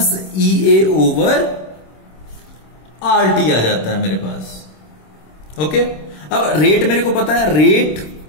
EA/RT आ जाता है मेरे पास। ओके, अब रेट मेरे को पता है, rate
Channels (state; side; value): late; right; 26 ms